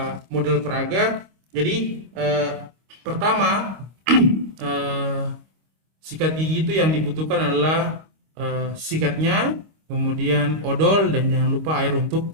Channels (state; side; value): late; left; 25 ms